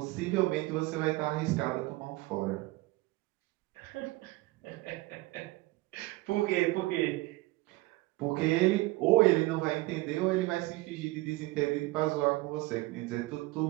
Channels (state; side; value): quieter; left; 20.2 dB